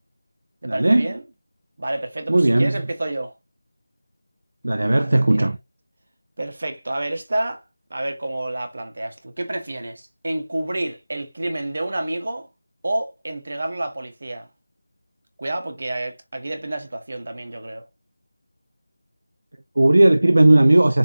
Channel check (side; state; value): both; inverted; correlation -0.99